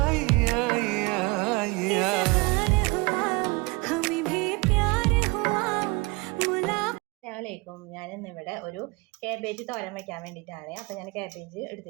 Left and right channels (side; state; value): left; quieter; 26.3 dB